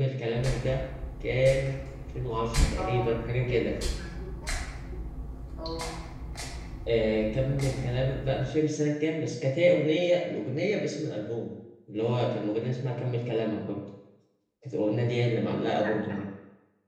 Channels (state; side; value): identical; both; correlation 1.00